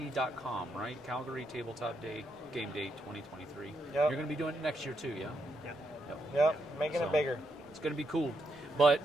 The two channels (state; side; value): normal; both; correlation 0.80